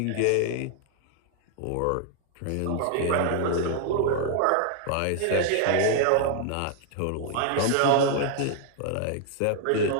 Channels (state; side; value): different; both; correlation 0.00